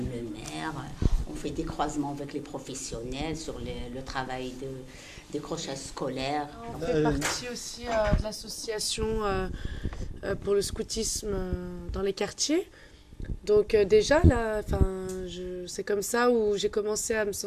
le maire. On fait des croisements avec les professionnels sur le travail de décrochage scolaire. On fait partie aussi de l'association pour le scoutisme dans les quartiers. Donc déjà, là, c'est comme ça où j'ai commencé à me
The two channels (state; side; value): identical; both; correlation 1.00